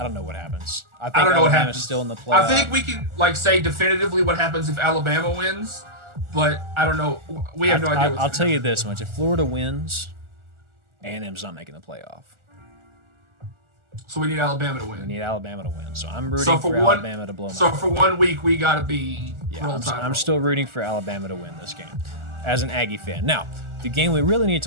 don't know what happens. I think don't know what Alabama's happens. still in the playoff. I think we can say definitively what happens if Alabama wins, but I don't know. We have no idea. I'll tell you this much: if Florida wins, A&M's not making the playoff. So we need Alabama to win. We need Alabama to win. So I'm rooting for Alabama to blow them out. So for 1 week, we got to be I'm still rooting for Alabama to win this game as an Aggie fan. Now, the game we really need to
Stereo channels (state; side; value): late; left; 1.4 ms